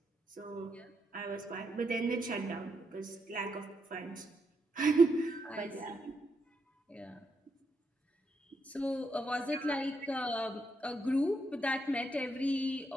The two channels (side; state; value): both; normal; correlation 0.79